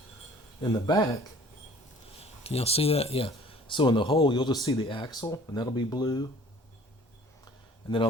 In the back, can y'all see that? Yeah. So in the hole, you'll just see the axle, and that'll be blue. And then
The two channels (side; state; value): both; normal; correlation 0.51